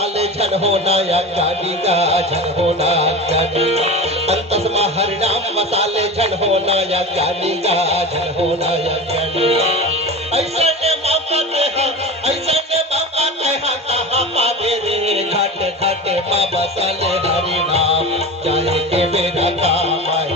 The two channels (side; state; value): both; normal; correlation 0.29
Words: झन होना या ज्ञानी का झन होना ज्ञानी। अंतस्मा हरि नाम मसाले झन होना या ज्ञानी का झन होना या ज्ञानी। ऐसा ने मौका कहाँ पावे रे घाटे घाटे माँ बसाले हरि नाम जाए के मेरा काम